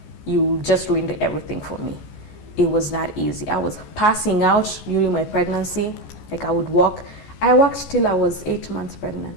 you just ruined everything for me. It was not easy. I was passing out during my pregnancy. Like I would walk. I walked till I was 8 months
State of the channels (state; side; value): late; right; 14 ms